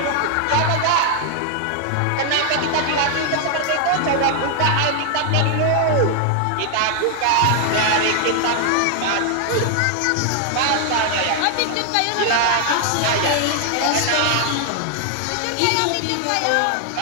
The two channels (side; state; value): both; different; correlation 0.00